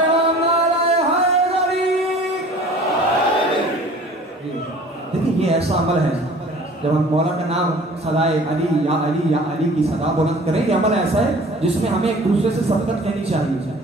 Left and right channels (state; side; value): normal; both; correlation 0.47